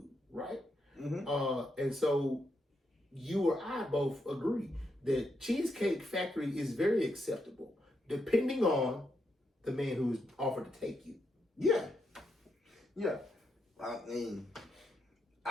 right? And so you or I both agree that Cheesecake Factory is very acceptable, depending on the man who is offered to take you. Yeah. Yeah. I mean,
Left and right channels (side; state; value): both; normal; correlation 0.81